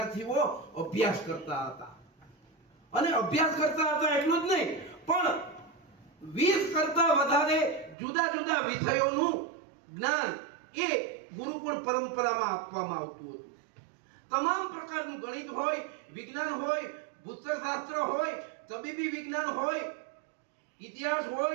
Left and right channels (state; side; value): drops out; left; at 8.0 s